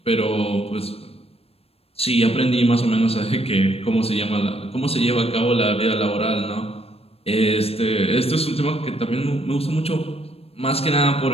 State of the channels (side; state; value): right; late; 0.28 ms